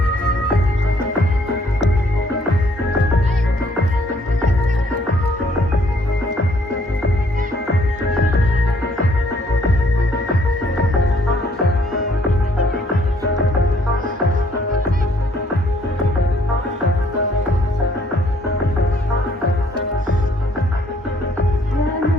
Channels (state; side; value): normal; both; correlation 0.65